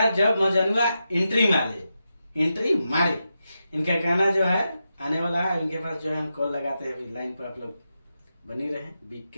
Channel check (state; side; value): inverted; both; correlation -0.88